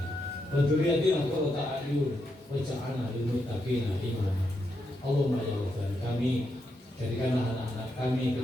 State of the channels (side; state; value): both; normal; correlation 0.82